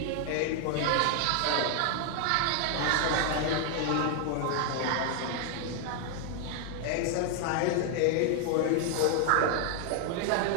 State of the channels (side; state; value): both; different; correlation 0.00